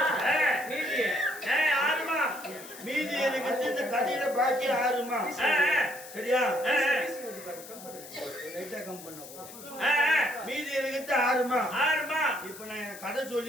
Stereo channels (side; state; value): left; noise; hiss, 15 dB below the sound